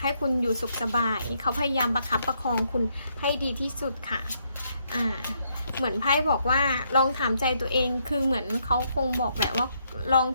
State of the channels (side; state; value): both; inverted; correlation -0.75